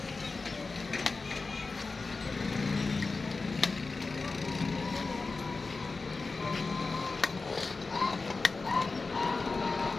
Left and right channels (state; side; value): quieter; right; 3.9 dB